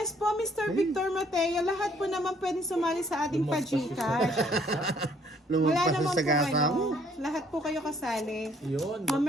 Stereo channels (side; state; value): both; normal; correlation 0.63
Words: po, Mr. Victor Mateo, lahat po naman pwede sumali sa ating pa-Gcash. Wala Lumampas naman sa po gasa mo. lahat po kayo kasali. Yun.